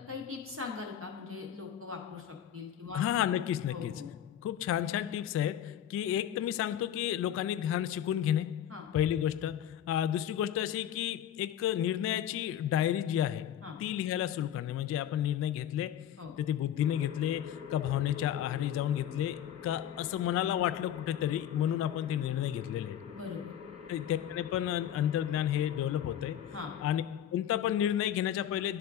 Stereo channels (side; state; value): right; quieter; 10.4 dB